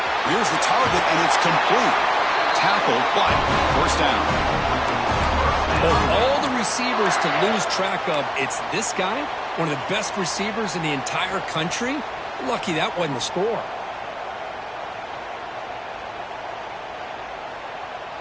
Here's the target, and it's complete. Tackled, but first down. Of all the receivers to lose track of, it's this guy, one of the best receivers in the entire country. Lucky that wasn't the score.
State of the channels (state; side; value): identical; both; correlation 1.00